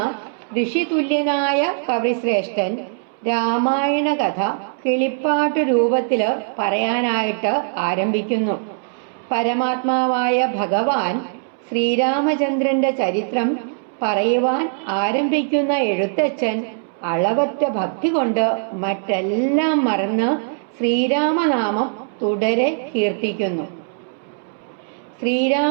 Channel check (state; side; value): silent; left; 65 dB below the other